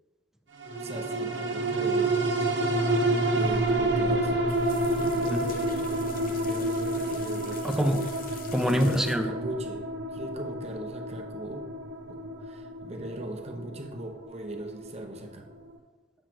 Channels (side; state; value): both; normal; correlation 0.38